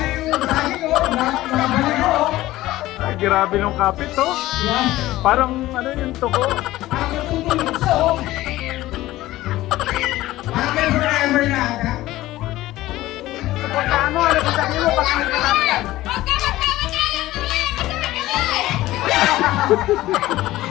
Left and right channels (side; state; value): right; quieter; 16.4 dB